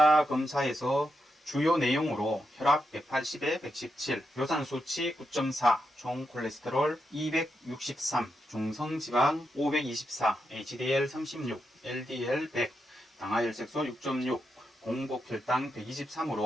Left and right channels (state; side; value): normal; both; correlation 0.85